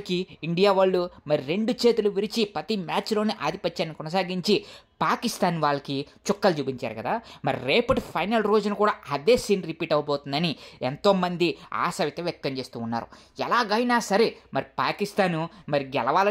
ఇండియా వాళ్ళు మరి 2 చేతులు విరిచి ప్రతి మ్యాచ్లోనే ఆధిపత్యాన్ని కొనసాగించి పాకిస్తాన్ వాళ్ళకి చుక్కలు చూపించారు కదా. మరి రేపటి ఫైనల్ రోజున కూడా అదే సీన్ రిపీట్ అవబోతుందని ఎంతోమంది ఆశ అయితే వ్యక్తం చేస్తూ ఉన్నారు. ఎలాగైనా సరే మరి పాకిస్తాను మరి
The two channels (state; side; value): identical; both; correlation 1.00